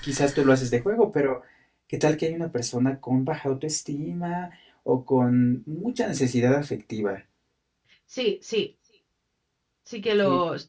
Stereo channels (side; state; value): both; identical; correlation 1.00